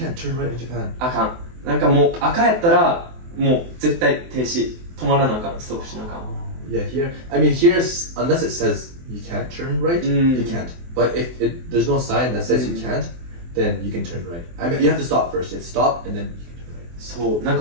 turn right in Japan. あかん。なんかもう赤やったら、もう絶対停止。止まらなあかん。ストップしなあかん。Yeah, here. I mean, here's unless it says you can't turn right, you can't. But if there's no sign that says you can't, then you can turn right. I mean, you have to stop first. You have to stop and then you can turn right. そう。なん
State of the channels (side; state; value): left; late; 24 ms